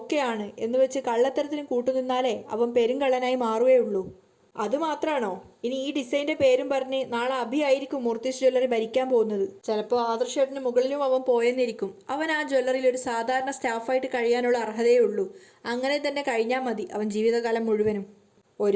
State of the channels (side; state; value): both; identical; correlation 1.00